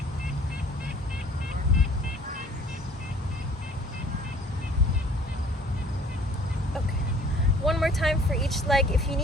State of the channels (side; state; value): both; normal; correlation 0.54